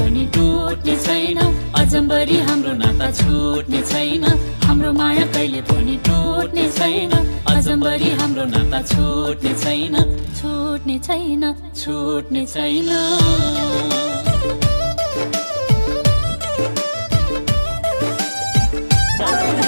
टुट्ने छैन अजम्बरी हाम्रो नाता छुट्ने छैन हाम्रो माया कहिले पनि टुट्ने छैन अजम्बरी हाम्रो नाता छुट्ने छैन छुट्ने छैन छुट्ने छैन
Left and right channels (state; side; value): inverted; both; correlation -1.00